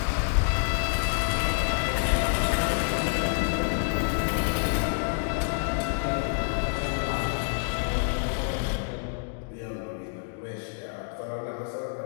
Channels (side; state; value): right; silent; digital silence